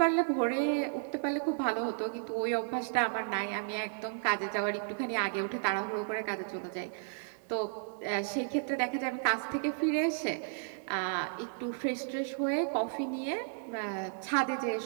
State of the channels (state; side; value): silent; left; digital silence